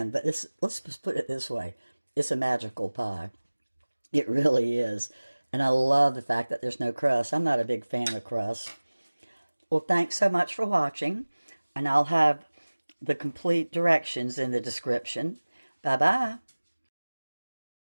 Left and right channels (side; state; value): both; inverted; correlation -1.00